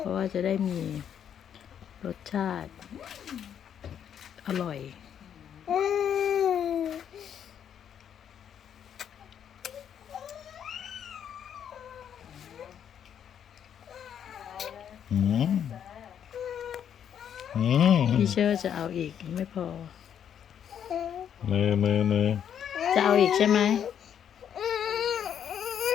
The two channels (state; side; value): quieter; right; 8.9 dB